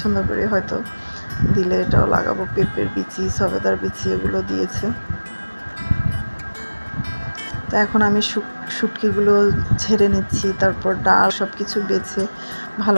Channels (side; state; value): both; inverted; correlation -1.00